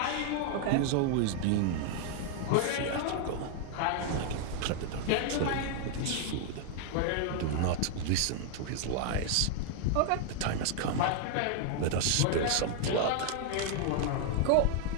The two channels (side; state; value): both; different; correlation 0.00